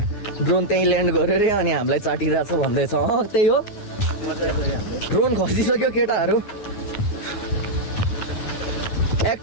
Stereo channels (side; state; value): right; late; 9.5 ms